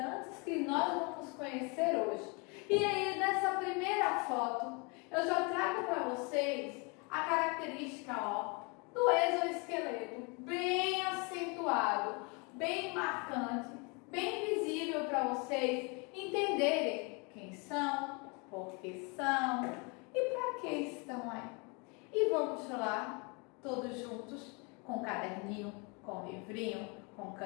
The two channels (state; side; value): quieter; right; 31.4 dB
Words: que nós vamos conhecer hoje. E aí, nessa primeira foto, eu já trago para vocês a característica, ó, do exoesqueleto, bem acentuado, bem marcante, bem visível para vocês entenderem quem são, por que são e para que estão aí. E vamos lá, todos juntos, com caderninho, com livrinho, com